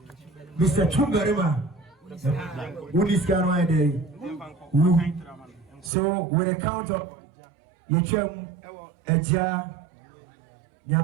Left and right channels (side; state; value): left; drops out; at 5.9 s